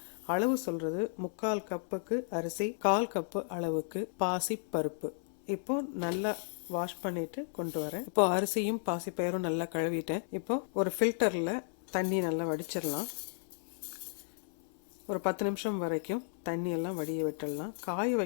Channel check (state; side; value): silent; right; 55 dB below the other